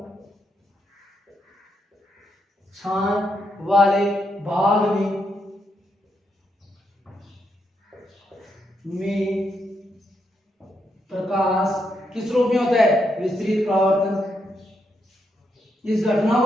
प्रकाश किस रूप में होता है, विस्तृत परावर्तन। इस घटना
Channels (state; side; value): normal; both; correlation 0.80